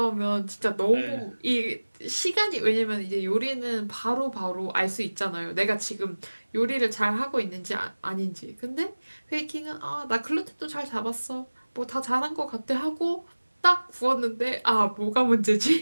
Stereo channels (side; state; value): both; inverted; correlation -1.00